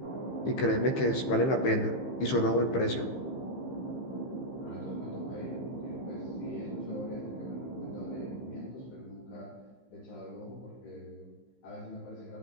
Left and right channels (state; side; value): late; right; 15 ms